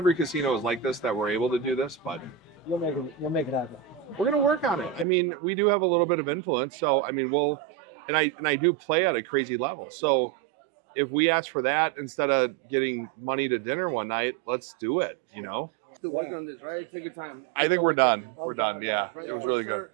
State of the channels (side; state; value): left; drops out; at 5.1 s